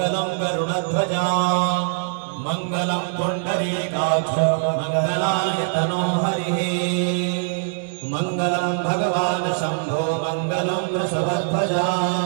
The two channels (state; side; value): silent; left; 57 dB below the other